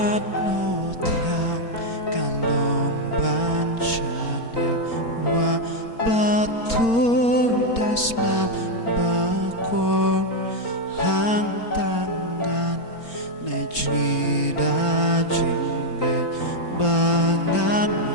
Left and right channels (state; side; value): late; right; 4.4 ms